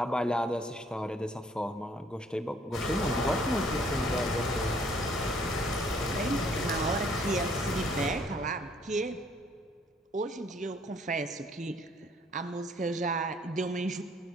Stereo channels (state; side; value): normal; both; correlation 0.62